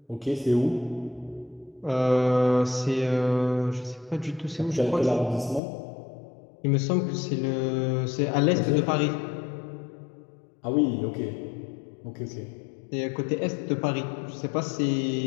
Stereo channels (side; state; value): right; drops out; at 5.6 s